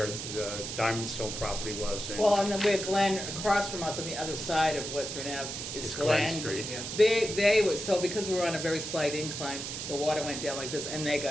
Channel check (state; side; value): noise; right; hiss, 6 dB below the sound